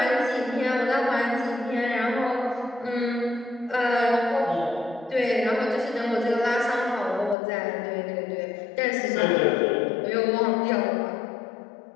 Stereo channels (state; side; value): drops out; right; at 7.4 s